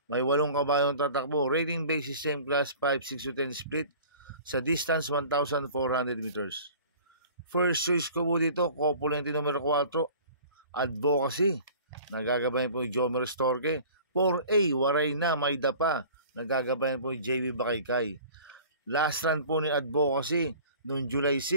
May 8 kabayong tatakbo. Rating basis same class 5, 6 to 10 split sa distance 1,400 meters. First choice ko po dito, Copulente numero 4, Advocacy. Nagagabayan po yung Jomer Storke. 4A, Waray na, May Dapa. Nagagabayan po yung JB Bakaykay. Last run po ni Advocacy noong July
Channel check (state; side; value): inverted; both; correlation -0.45